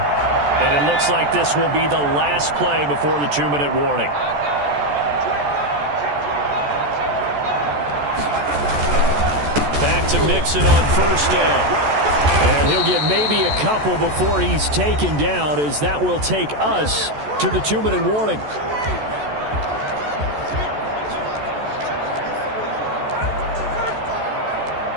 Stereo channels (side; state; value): left; late; 14 ms